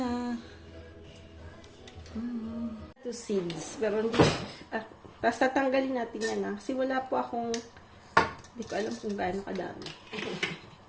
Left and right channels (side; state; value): both; identical; correlation 1.00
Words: Two seeds. Pero hindi, tapos tatanggalin natin yan na. Kasi wala po akong, hindi ko alam kung gaano kadami.